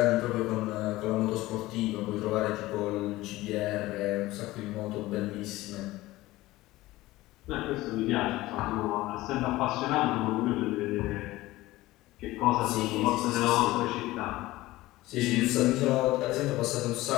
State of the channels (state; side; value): quieter; right; 18.0 dB